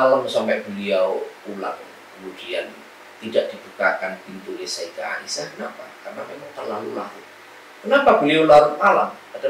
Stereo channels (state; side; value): identical; both; correlation 1.00